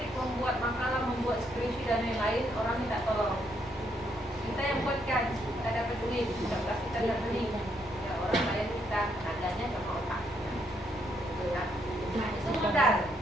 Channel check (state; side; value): normal; both; correlation 0.74